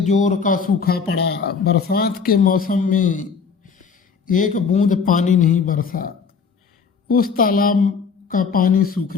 जोर का सूखा पड़ा। बरसात के मौसम में एक बूंद पानी नहीं बरसा। उस तालाब का पानी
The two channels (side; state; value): right; quieter; 5.7 dB